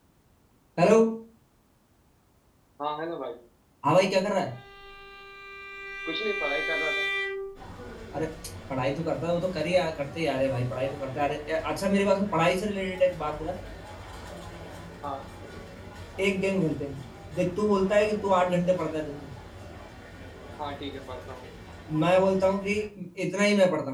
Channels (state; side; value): identical; both; correlation 1.00